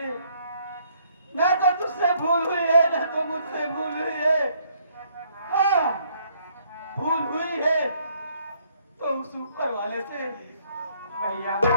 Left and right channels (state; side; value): inverted; both; correlation -0.66